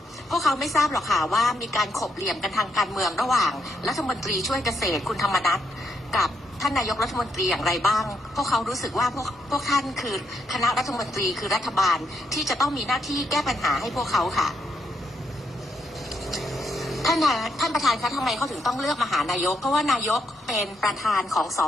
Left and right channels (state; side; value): normal; both; correlation 0.79